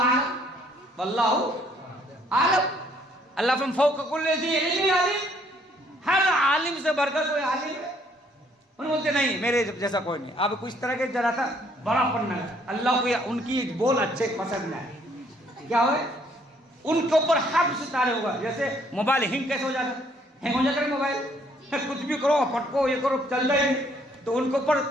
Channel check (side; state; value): both; normal; correlation 0.65